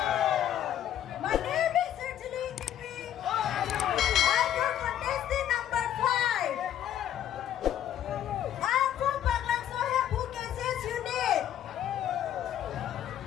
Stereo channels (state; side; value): quieter; right; 11.0 dB